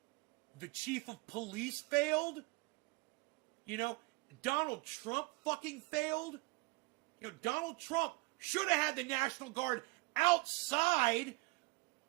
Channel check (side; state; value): left; quieter; 25.3 dB